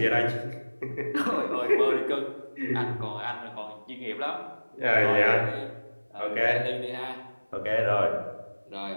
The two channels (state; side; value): inverted; both; correlation -1.00